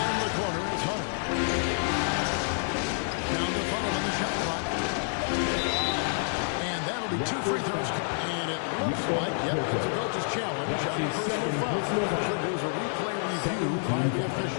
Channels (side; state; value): right; silent; 59 dB below the other